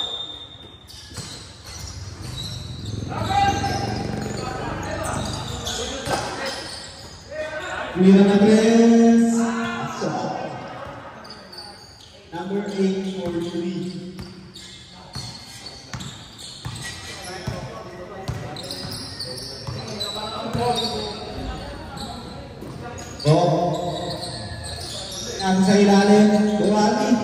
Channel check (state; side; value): identical; both; correlation 1.00